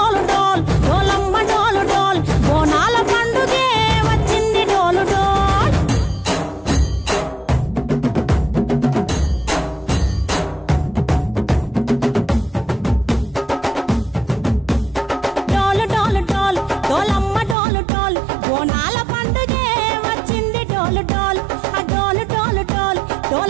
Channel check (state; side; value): drops out; left; at 17.6 s